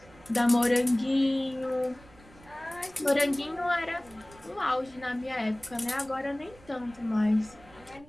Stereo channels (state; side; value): noise; right; rumble, 24 dB below the sound